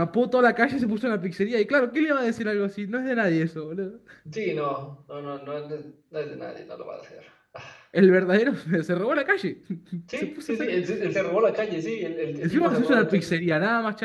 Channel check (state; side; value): identical; both; correlation 1.00